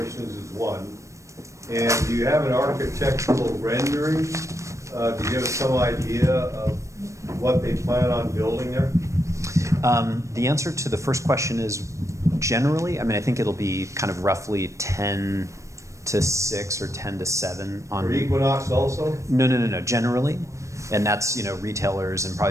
is 1? And do you have an architectural rendering to give us some idea of what they plan on building there? The answer to the first question is generally, I think it'll be kind of roughly 10 to 6 or 10 to 7 on... For Equinox also? No, generally. And that's, retailers and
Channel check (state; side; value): late; left; 0.15 ms